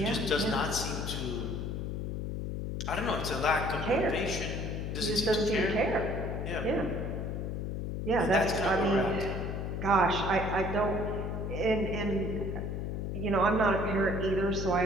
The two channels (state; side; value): noise; left; hum, 3 dB below the sound